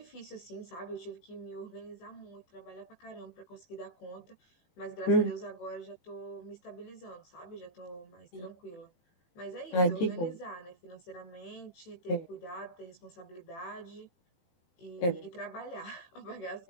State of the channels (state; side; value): late; right; 18 ms